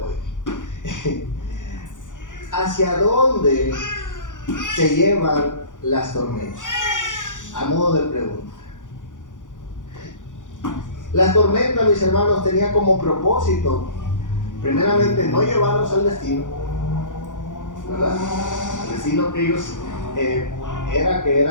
¿Hacia dónde te llevan las tormentas? A modo de pregunta. La tormenta, mis hermanos, tenía como propósito, primeramente, no llevarlos al destino, ¿verdad? El destino que ellos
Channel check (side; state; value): right; late; 0.87 ms